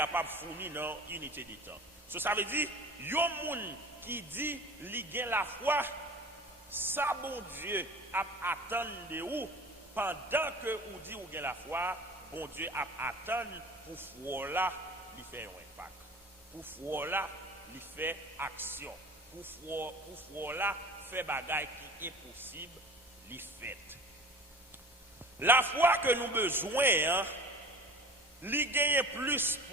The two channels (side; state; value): both; normal; correlation 0.39